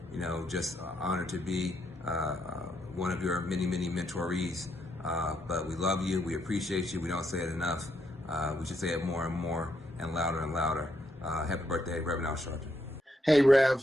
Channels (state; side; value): normal; both; correlation 0.77